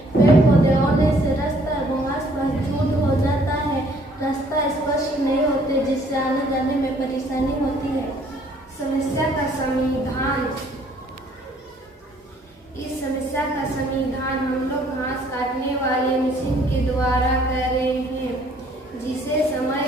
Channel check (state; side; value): normal; both; correlation 0.61